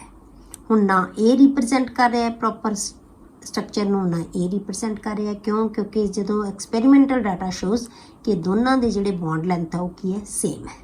ਹੁਣ ਨਾ ਇਹ ਰਿਪਰੈਜ਼ੈਂਟ ਕਰ ਰਿਹਾ ਪ੍ਰੋਪਰ ਸਟਰਕਚਰ ਨੂੰ, ਨਾ ਇਹ ਰਿਪਰੈਜ਼ੈਂਟ ਕਰ ਰਿਹਾ। ਕਿਉਂ? ਕਿਉਂਕਿ ਜਦੋਂ ਐਕਸਪੈਰੀਮੈਂਟਲ ਡਾਟਾ ਸ਼ੋਜ਼ ਕਿ ਦੋਨਾਂ ਦੇ ਜਿਹੜੇ ਬੌਂਡ ਲੈਂਥ ਆ ਉਹ ਕੀ ਹੈ, ਸੇਮ ਹੈ,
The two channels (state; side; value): identical; both; correlation 1.00